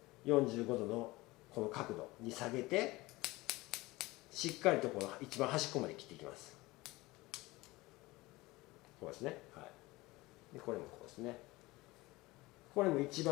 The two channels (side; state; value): right; quieter; 20.7 dB